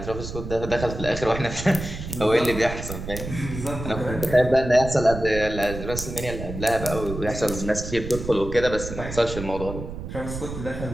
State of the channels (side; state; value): right; noise; rumble, 8 dB below the sound